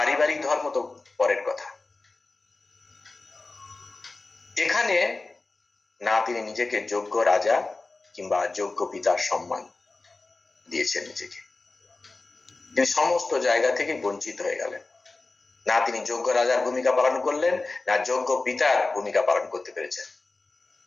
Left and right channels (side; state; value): right; quieter; 3.5 dB